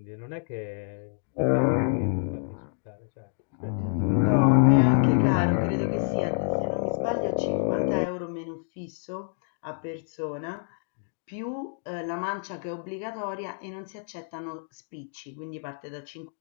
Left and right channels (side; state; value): right; silent; digital silence